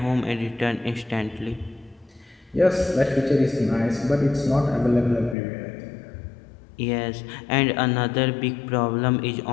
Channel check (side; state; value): right; drops out; at 5.4 s